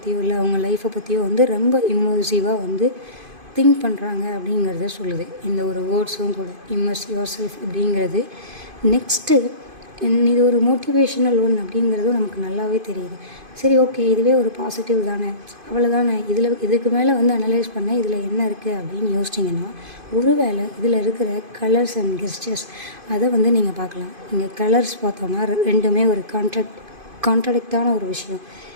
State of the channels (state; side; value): late; left; 2.5 ms